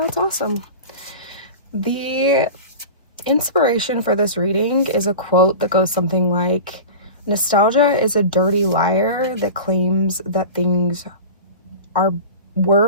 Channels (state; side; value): inverted; both; correlation -0.33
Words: awesome. The inspiration for this reading is a quote that goes something like, "Nostalgia is a dirty liar that claims that things were